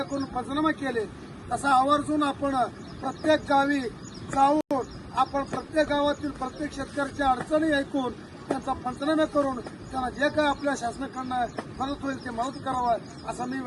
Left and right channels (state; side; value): identical; both; correlation 1.00